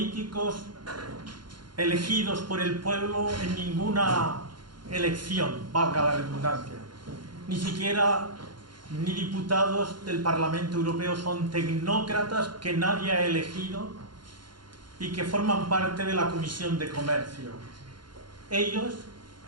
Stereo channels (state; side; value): late; left; 0.72 ms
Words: elegidos por el pueblo en ninguna elección, valga la redundancia. Ni siquiera ni diputados del Parlamento Europeo, son tecnócratas que nadie ha elegido y que forman parte de la Comisión de Comercio. Ellos